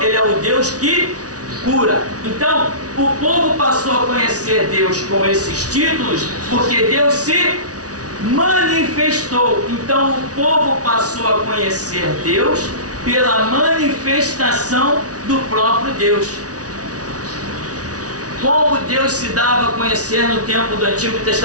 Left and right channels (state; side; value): late; left; 0.68 ms